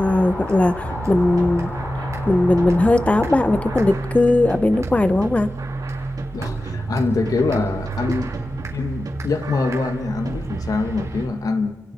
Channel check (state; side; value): normal; both; correlation 0.93